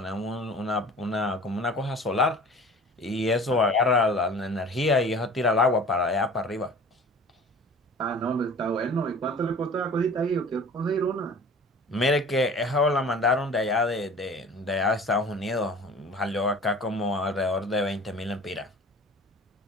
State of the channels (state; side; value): normal; both; correlation 0.43